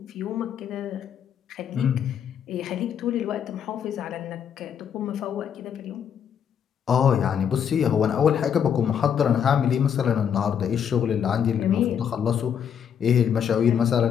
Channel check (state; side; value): quieter; right; 8.2 dB